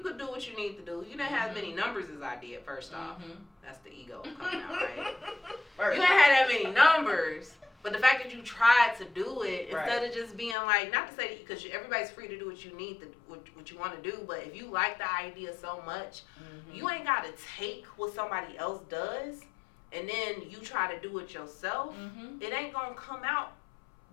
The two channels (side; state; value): right; drops out; at 10.6 s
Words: could do what you need to do. You didn't have as many numbers as I did, first off. That's the ego coming out, right? You didn't have that many numbers. But the fact that you tried to do it, instead of just being like, not to say that, because everybody's free to do what you need to, what you want to do, but if you like the idea so much, you ain't got to take what somebody else does, and then you try to do it yourself. It ain't going to come out